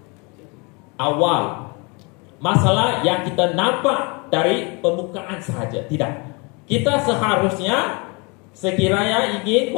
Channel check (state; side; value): quieter; right; 30.1 dB